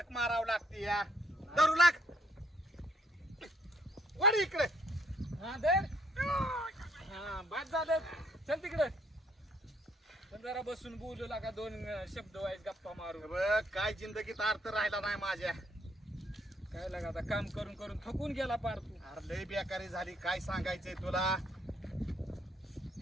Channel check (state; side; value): normal; both; correlation 0.67